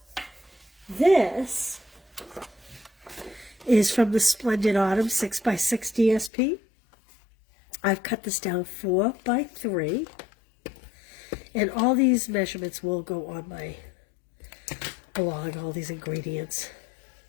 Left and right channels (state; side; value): drops out; right; at 6.3 s